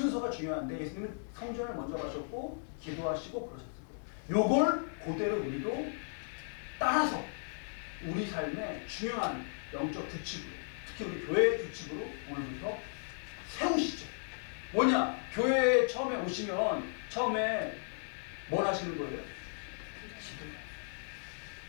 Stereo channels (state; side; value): silent; right; digital silence